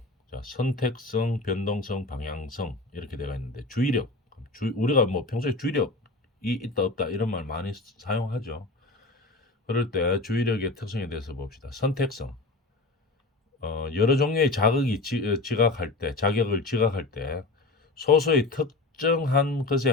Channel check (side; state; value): right; quieter; 3.2 dB